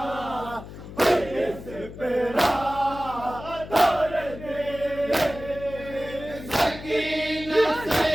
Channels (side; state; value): left; noise; hum, 13 dB below the sound